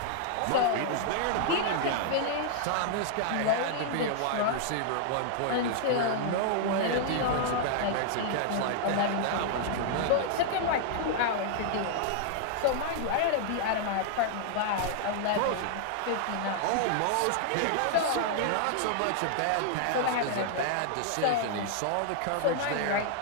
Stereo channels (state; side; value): different; both; correlation -0.01